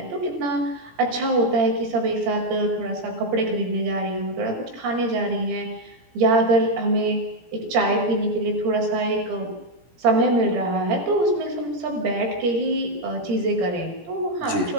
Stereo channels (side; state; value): left; late; 17 ms